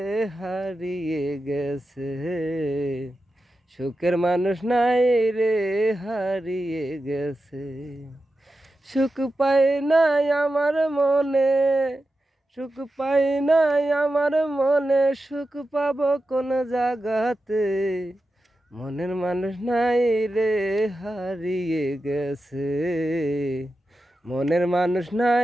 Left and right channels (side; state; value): both; normal; correlation 0.91